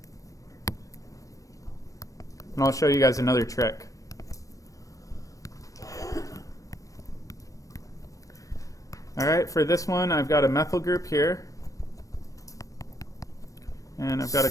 And I'll show you guys another trick. All right, for this one, I've got a methyl group here. And I've got a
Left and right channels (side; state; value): right; late; 0.16 ms